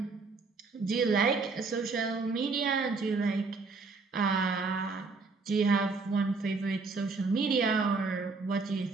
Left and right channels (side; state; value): left; quieter; 4.2 dB